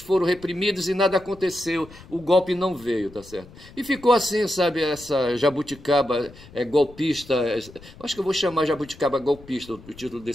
reprimidos e nada aconteceu, o golpe não veio, tá certo? E ficou assim, sabe, essa jabuticaba golpista, acho que eu vou chamar jabuticaba golpista, o título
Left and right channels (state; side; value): noise; left; rumble, 20 dB below the sound